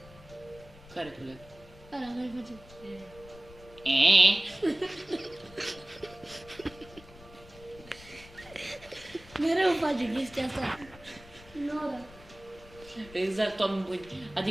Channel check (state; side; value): noise; left; rumble, 21 dB below the sound